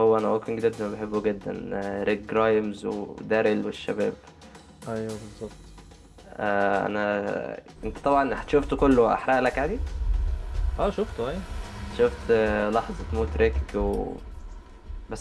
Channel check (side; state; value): both; identical; correlation 1.00